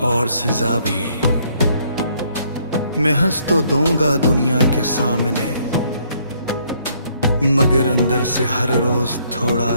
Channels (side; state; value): both; inverted; correlation -0.67